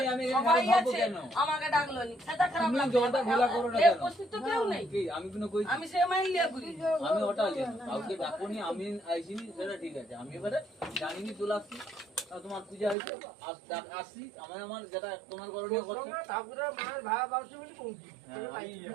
আমি সবাই ভাববো আছে কেন আমাকে ডাকলো নি সেটা খারাপ তুমি লাগতো জলটা ঘোলা করো না এ কেন উপস্থিত তো কেউ নেই কি আমি কোনো কই আমি সে মাইল লিয়া করি আমি ওটা জানি কাউকে ডাকুনি আমি আইছিনি সেটা ঠিক আছে আমি এবারে জানিনি চলে আসছি তোমার পূজা হয়েছে আসছি আমার যেটা তোমার করণীয় করছে ঠাকুরের মায়ের ভাড়া বাউসি বলি পৌঁছি।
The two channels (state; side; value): drops out; left; at 13.0 s